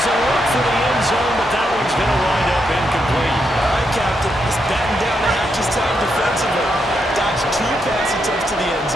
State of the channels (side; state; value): both; normal; correlation 0.81